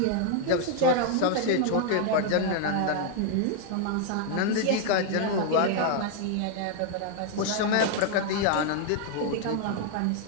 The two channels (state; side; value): different; both; correlation 0.00